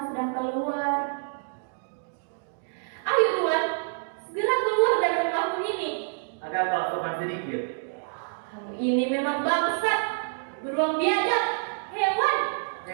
sedang keluar. Ayo Tuan, segera keluar dari rumahmu ini. Agak kau sopan sedikit. Kamu ini memang bangsat, beruang biadab, hewan.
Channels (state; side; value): silent; left; digital silence